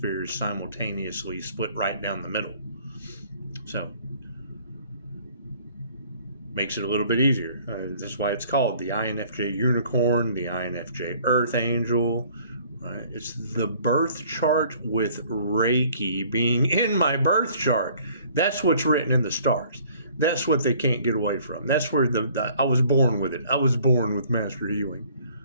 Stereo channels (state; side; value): inverted; both; correlation -0.56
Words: simultaneously, split right down the middle. So, makes it a little bit easier. That's why it's called the INFJ Unicorn, the INFJ Earth Angel. Right? It's the birth chart with Reiki being in my birth chart. That's what's written in the stars. That's what they can't get away from. That's where I was born with it. I was born with master healing.